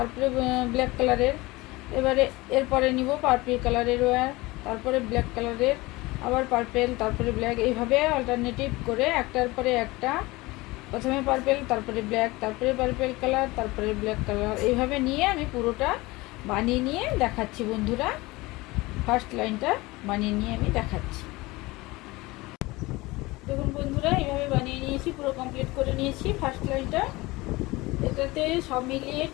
ব্ল্যাক কালারের, এবারে এরপরে নিব পার্পল কালারের ওয়্যার, তারপরে ব্ল্যাক কালারের, আবার পার্পল, তারপরে ব্ল্যাক, এইভাবে অল্টারনেটিভ করে একটার পরে একটা, প্রথমে পার্পল, তারপরে ব্ল্যাক, তারপরে পার্পল কালার, তারপরে ব্ল্যাক কালার, এইভাবে নিয়ে আমি পুরোটা বানিয়ে নিয়ে দেখাচ্ছি বন্ধুরা। ফার্স্ট লাইনটা বানিয়ে নিয়ে আমি দেখাচ্ছি। দেখুন বন্ধুরা, এইভাবে বানিয়ে নিয়েছি, পুরো কমপ্লিট করে নিয়েছি ফার্স্ট লাইনটা। এটাতে সব মিলিয়ে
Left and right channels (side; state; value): right; quieter; 21.5 dB